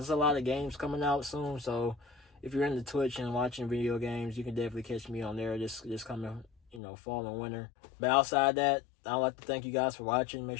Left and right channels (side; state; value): right; drops out; at 6.8 s